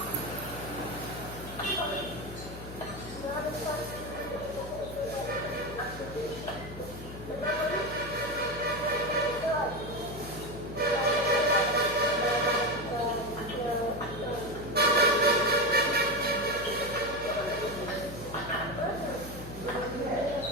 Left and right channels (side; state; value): left; noise; hum, 13 dB below the sound